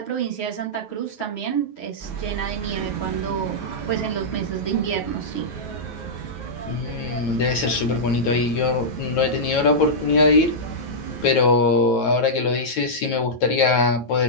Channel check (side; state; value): right; late; 9.3 ms